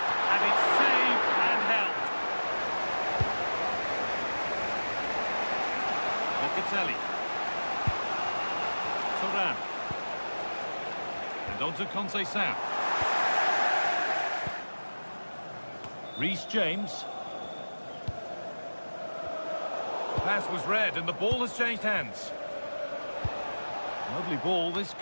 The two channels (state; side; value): inverted; both; correlation -1.00